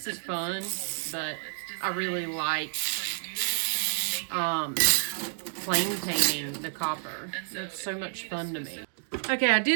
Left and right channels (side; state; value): left; silent; 58 dB below the other